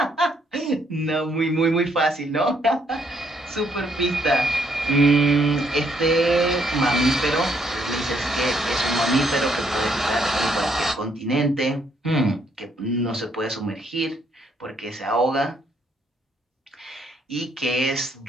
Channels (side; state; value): both; normal; correlation 0.71